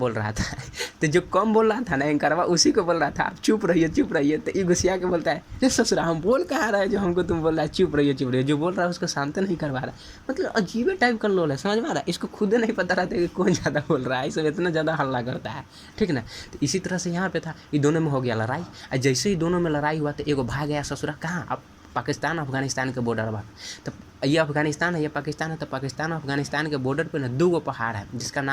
रहा था। तो जो कम बोल रहा था ना एंकरवा, उसी को बोल रहा था आप चुप रहिए। तो ये गुस्सिया के बोलता है, ये ससुरा हम बोल कहाँ रहा है जो हमको तुम बोल रहा है चुप रहिए। जो बोल रहा है उसको शांत नहीं करवा रहा। मतलब अजीब टाइप का लोल है, समझ में आ रहा है। इसको खुद नहीं पता रहता कि कौन ज़्यादा बोल रहा है, इसमें इतना ज़्यादा हल्ला करता है, ठीक ना। तो इसी तरह से यहाँ पे था, ये दोनों में हो गया लड़ाई। और जैसे ही दोनों में लड़ाई हुआ, तो एगो भाग गया ससुरा कहाँ, अब पाकिस्तान अफगानिस्तान के बॉर्डर पर। तो ये अफगानिस्तान है, ये पाकिस्तान है। तो पाकिस्तान अफगानिस्तान के बॉर्डर पे ना 2 पहाड़ है, जिसका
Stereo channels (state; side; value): identical; both; correlation 1.00